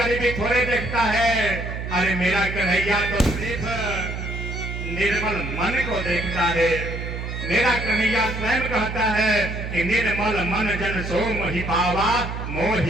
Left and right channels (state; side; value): noise; right; hum, 6 dB below the sound